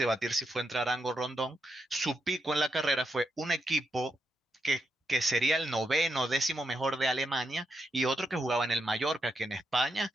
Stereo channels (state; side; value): normal; both; correlation 0.83